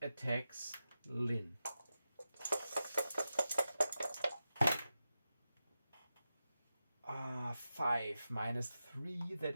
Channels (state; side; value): inverted; both; correlation -0.92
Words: attacks Lynn. 5 minus 3,